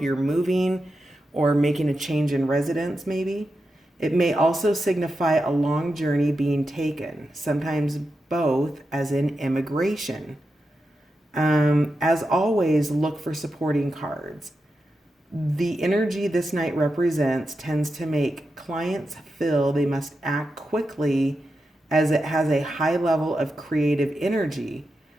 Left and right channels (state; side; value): normal; both; correlation 0.88